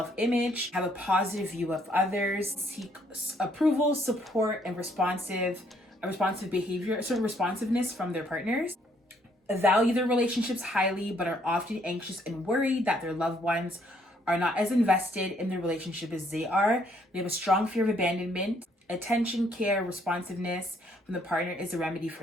have a positive view of others, seek approval, support, and responsive behavior, sort of responsiveness from their partners, value their relationships highly, but are often anxious and worried that their loved ones are not as invested in their relationship as they are. They have a strong fear of abandonment. Attention, care, responsiveness from the partner is a remedy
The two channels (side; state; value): both; normal; correlation 0.68